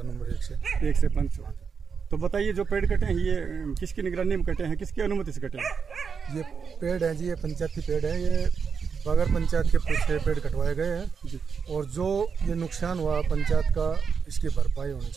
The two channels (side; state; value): left; quieter; 6.0 dB